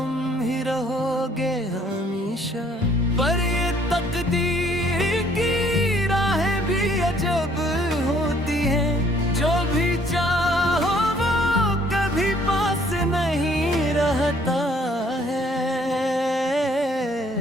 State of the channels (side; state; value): both; normal; correlation 0.62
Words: ही रहोगे हमेशा। पर ये तकदीर की राहें भी अजब होती हैं, जो भी चाहो वो कभी पास नहीं रहता है।